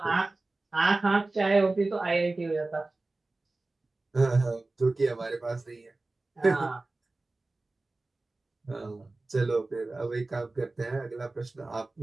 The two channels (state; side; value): quieter; left; 3.2 dB